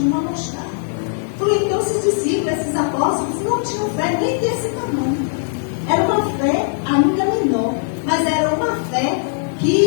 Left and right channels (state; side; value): silent; right; 64 dB below the other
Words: uma mostarda. Falei, então esses discípulos, esses apóstolos, não tinham fé nem desse tamanho. Era uma fé ainda menor, mas era uma fé